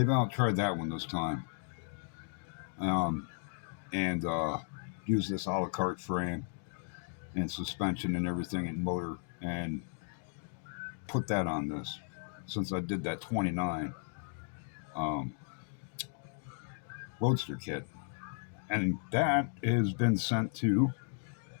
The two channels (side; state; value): right; silent; 54 dB below the other